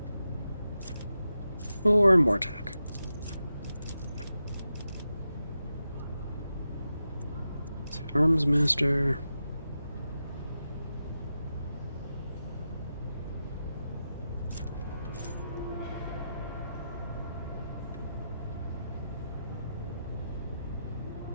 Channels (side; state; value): both; inverted; correlation -0.89